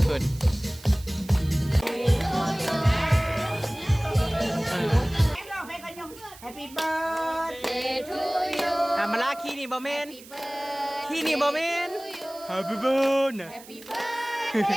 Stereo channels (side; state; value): right; noise; hiss, 19 dB below the sound